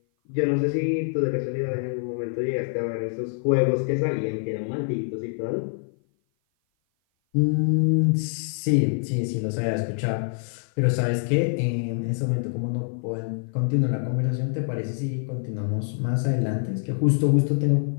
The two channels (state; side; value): silent; right; 56 dB below the other